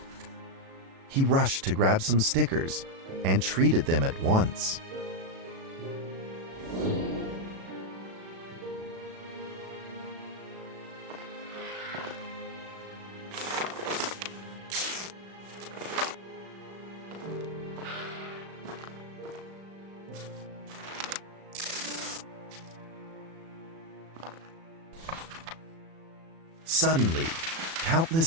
He rushed to grab some stickers and treated them at once. Suddenly,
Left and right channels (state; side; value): late; left; 36 ms